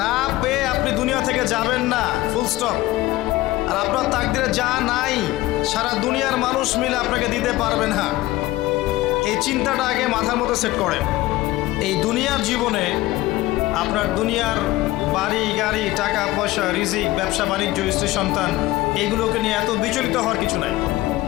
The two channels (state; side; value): quieter; right; 17.7 dB